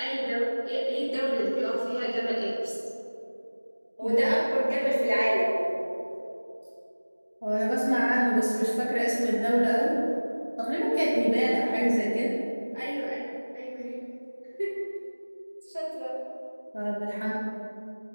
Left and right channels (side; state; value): both; inverted; correlation -1.00